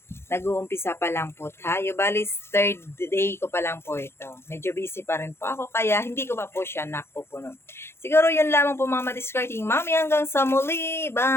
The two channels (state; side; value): late; right; 0.12 ms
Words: nag-uumpisa pa lang po tayo. Bali, third day ko pa lang po ito. Medyo busy pa rin po ako, kaya hindi ko pa po siya napupuno. Siguro yun lamang po mga madiscarding mami. Hanggang sa muli.